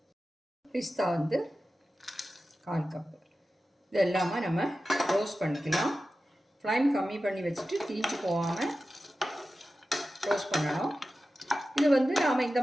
பிஸ்தா கால் கப்பு. இது எல்லாமே நம்ம ரோஸ்ட் பண்ணிக்கலாம். ஃப்ளைம் கம்மி பண்ணி வச்சுட்டு தீஞ்சு போகாமல் ரோஸ்ட் பண்ணணும். இது நாம் இந்த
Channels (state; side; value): normal; both; correlation 0.94